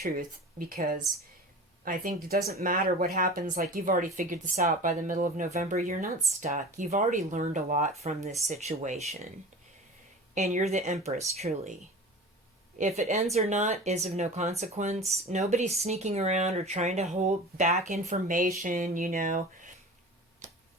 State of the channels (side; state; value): both; normal; correlation 0.36